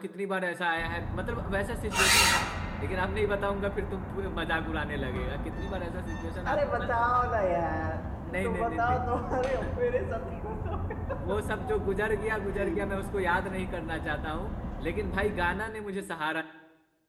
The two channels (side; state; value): both; identical; correlation 1.00